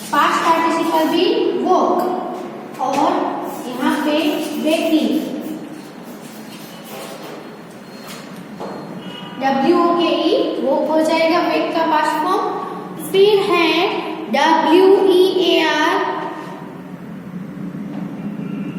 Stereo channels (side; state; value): both; identical; correlation 1.00